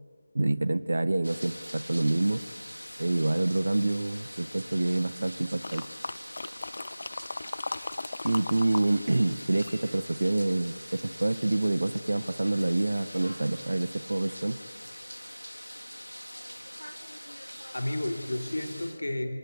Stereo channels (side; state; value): both; inverted; correlation -0.99